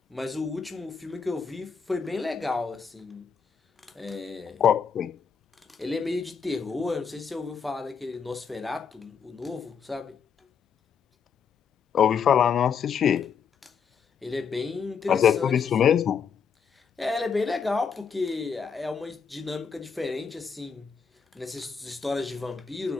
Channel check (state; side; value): quieter; right; 6.5 dB